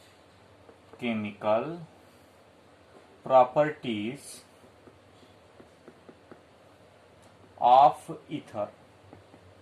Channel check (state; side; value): identical; both; correlation 1.00